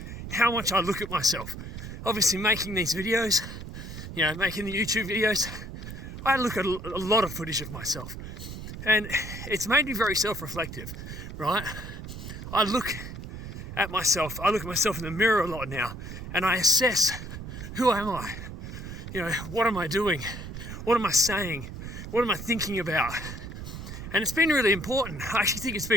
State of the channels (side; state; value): right; noise; rumble, 9 dB below the sound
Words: how much I look at myself. Obviously making these videos, you know, making the YouTube videos, I look at a lot of footage of myself and it's made me very self-reflective, right? I look at myself in the mirror a lot now and I assess, who am I? You know, what am I doing? What am I saying? What am I thinking about? And it's been really important. I actually think it's